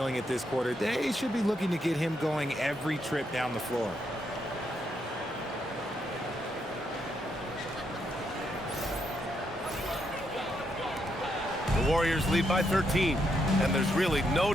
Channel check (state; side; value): normal; both; correlation 0.78